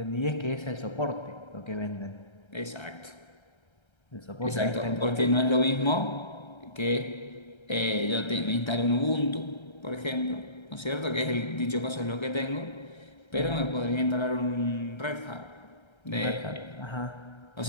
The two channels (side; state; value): right; late; 1.3 ms